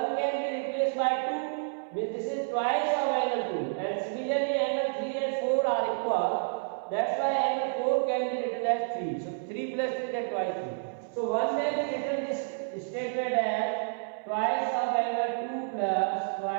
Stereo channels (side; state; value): left; silent; 58 dB below the other